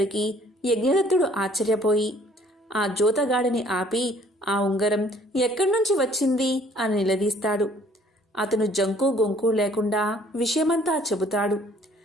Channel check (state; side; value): normal; both; correlation 0.58